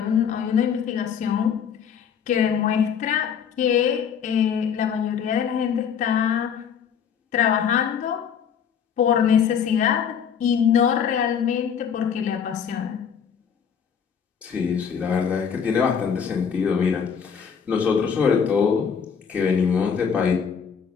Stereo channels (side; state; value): right; quieter; 7.4 dB